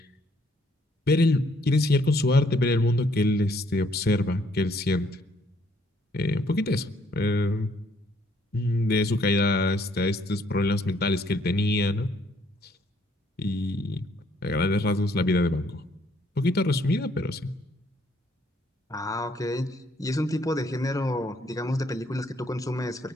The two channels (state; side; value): normal; both; correlation 0.67